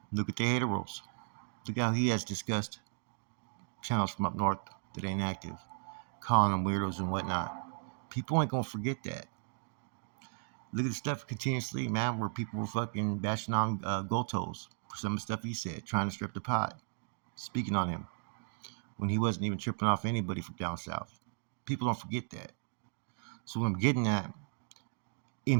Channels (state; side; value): silent; left; 54 dB below the other